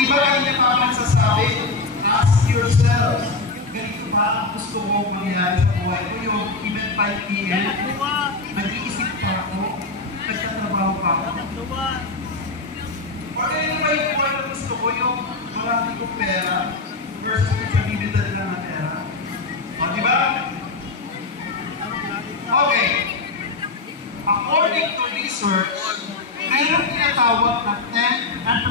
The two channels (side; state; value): right; quieter; 3.7 dB